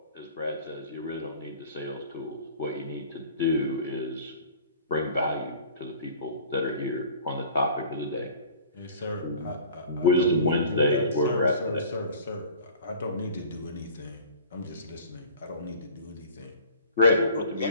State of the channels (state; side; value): inverted; both; correlation -0.45